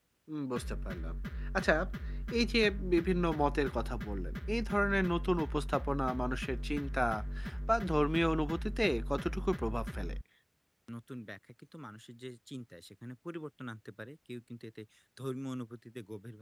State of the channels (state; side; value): identical; both; correlation 1.00